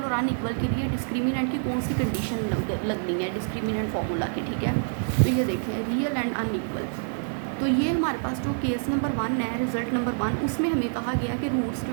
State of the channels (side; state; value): left; silent; digital silence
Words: और अनइक्वल के लिए डिस्क्रिमिनेंट की कौन सी कंडीशन लगनी है डिस्क्रिमिनेंट फार्मूला की, ठीक है। तो ये देखें रियल एंड अनइक्वल। तो ये हमारे पास जो केस नंबर 1 है, रिज़ल्ट नंबर 1, उसमें हमें कहा गया कि रूट्स